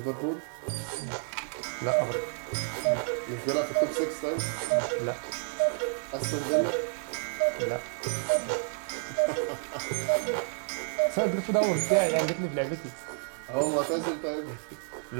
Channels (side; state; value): left; silent; 58 dB below the other